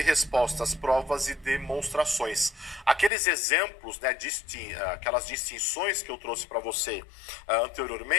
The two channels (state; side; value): drops out; right; at 3.1 s